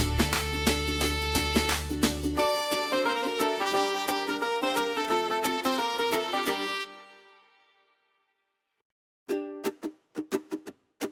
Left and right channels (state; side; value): identical; both; correlation 1.00